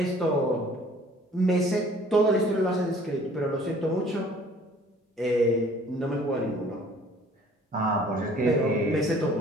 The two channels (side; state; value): both; normal; correlation 0.54